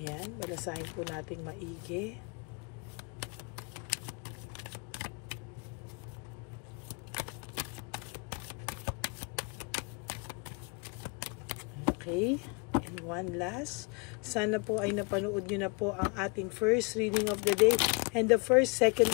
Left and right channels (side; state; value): right; quieter; 32.3 dB